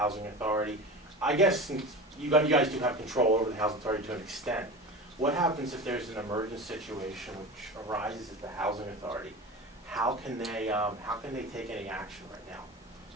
authority, I guess since you guys do have control over the housing authority to an extent, what happens if there's an emergent situation which arises at the housing authority? How can they take any action right now?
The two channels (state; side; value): normal; both; correlation 0.30